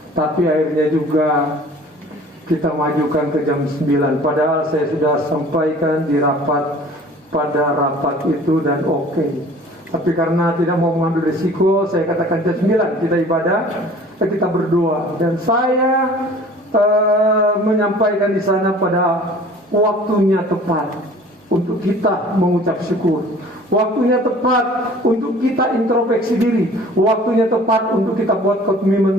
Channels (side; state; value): both; normal; correlation 0.48